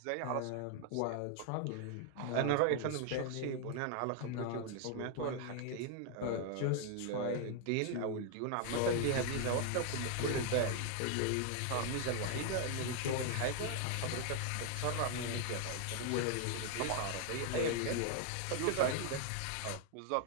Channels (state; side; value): different; both; correlation 0.00